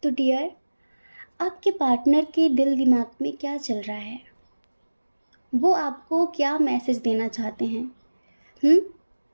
तो डियर, आपके पार्टनर के दिल दिमाग में क्या चल रहा है? वो आपको क्या मैसेज देना चाहते हैं?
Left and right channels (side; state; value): both; inverted; correlation -1.00